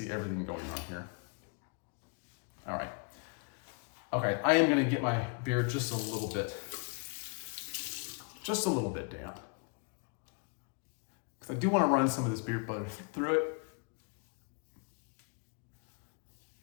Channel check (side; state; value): right; quieter; 35.8 dB